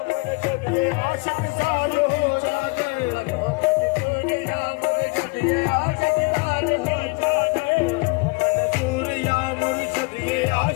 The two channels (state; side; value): quieter; right; 28.7 dB